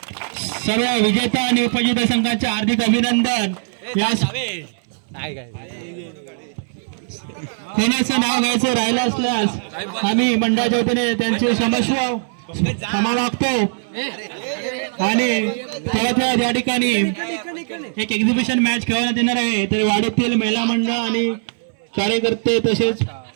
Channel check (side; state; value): left; silent; 66 dB below the other